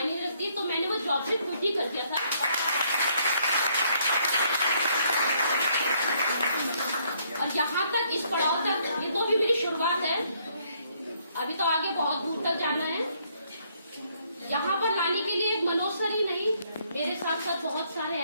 नहीं रखती, तो मैंने वो जॉब से क्विट ही कर दिया था। और यहाँ तक इस पड़ाव तक ये तो अभी मेरी शुरुआत है, अभी तो आगे बहुत दूर तक जाना है। यहाँ पर लाने के लिए एक मनोज सर ही नहीं, मेरे साथ साथ बहुत सारे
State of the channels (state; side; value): inverted; both; correlation -0.69